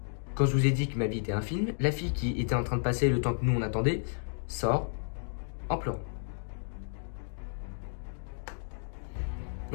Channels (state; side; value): silent; right; digital silence